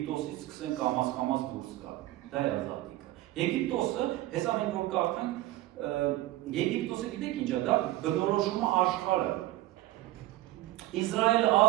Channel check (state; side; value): quieter; left; 16.7 dB